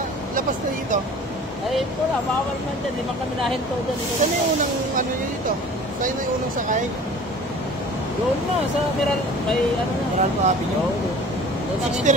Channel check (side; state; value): both; normal; correlation 0.44